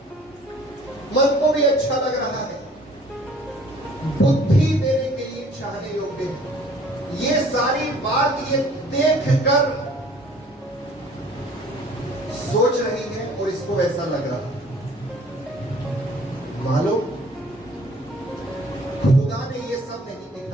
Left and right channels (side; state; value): both; normal; correlation 0.53